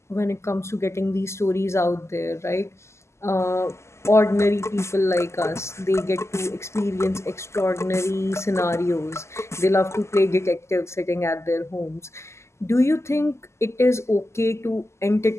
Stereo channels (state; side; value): late; right; 0.13 ms